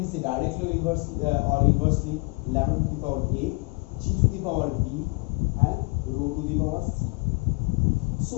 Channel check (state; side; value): quieter; right; 29.4 dB